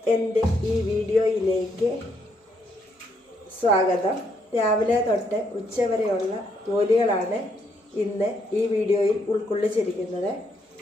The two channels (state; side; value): normal; both; correlation 0.74